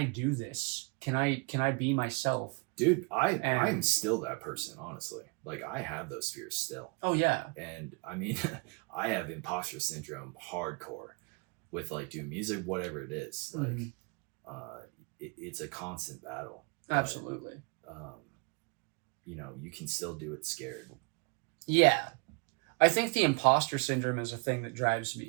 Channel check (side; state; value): left; quieter; 31.6 dB